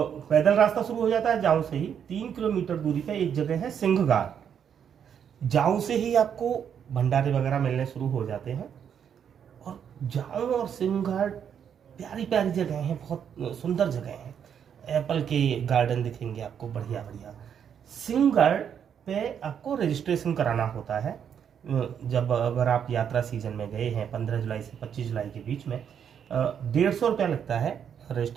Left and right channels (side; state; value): left; quieter; 8.2 dB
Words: पैदल रास्ता शुरू हो जाता है। जाऊं से ही 3 किलोमीटर दूरी पे एक जगह है सिंहगाड़। जाऊं से ही आपको भंडारे वगैरह मिलने शुरू हो जाते हैं। और जाऊं और सिंहगाड़ प्यारी प्यारी जगह हैं, बहुत सुंदर जगह हैं। एप्पल के गार्डन दिखेंगे आपको, बढ़िया बढ़िया। सिंहगढ़ पे आपको रजिस्ट्रेशन कराना होता है। जब अगर आप यात्रा सीजन में गए हैं 15 जुलाई से 25 जुलाई के बीच में, 150 रुपया लगता है